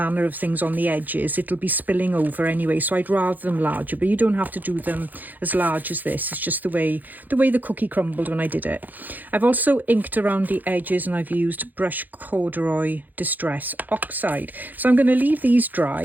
of things on the edges, it'll be spilling over anyway, so I'd rather them larger. But you don't have to do them as large as this. It's just the way the cookie crumbled when I did it. I've also inked around the edges, and I've used Brush Corduroy Distress Oxide. So I'm going to leave these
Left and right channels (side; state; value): left; late; 0.084 ms